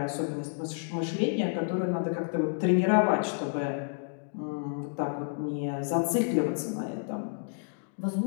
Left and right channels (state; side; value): silent; right; digital silence